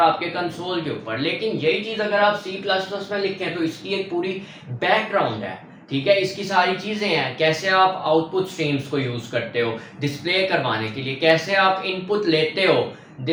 कंसोल के ऊपर। लेकिन यही चीज अगर आप सी प्लस प्लस में लिखें तो इसकी एक पूरी बैकग्राउंड है, ठीक है, इसकी सारी चीजें हैं। कैसे आप आउटपुट स्ट्रीम्स को यूज करते हो डिस्प्ले करवाने के लिए, कैसे आप इनपुट लेते हो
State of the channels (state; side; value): identical; both; correlation 1.00